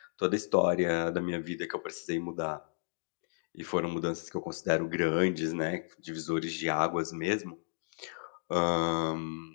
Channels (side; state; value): right; silent; digital silence